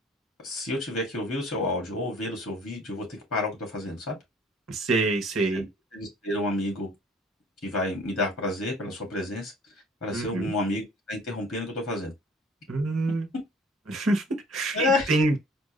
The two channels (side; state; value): both; normal; correlation 0.52